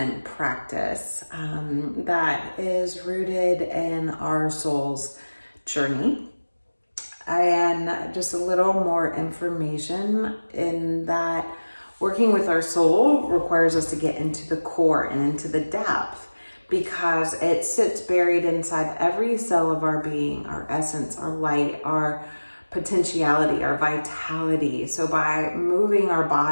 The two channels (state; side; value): inverted; both; correlation -1.00